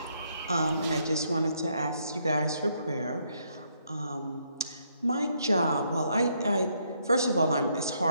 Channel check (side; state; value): both; inverted; correlation -0.74